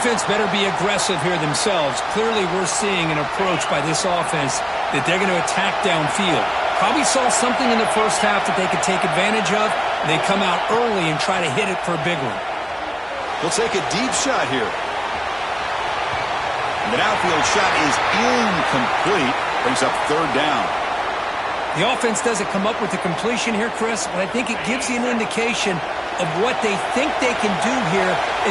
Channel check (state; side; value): identical; both; correlation 1.00